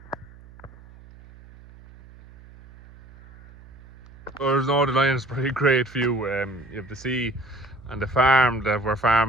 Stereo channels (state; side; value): noise; right; hum, 22 dB below the sound